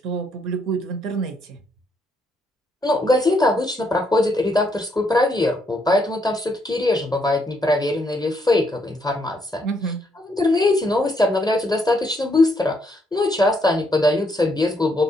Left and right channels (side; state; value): both; normal; correlation 0.74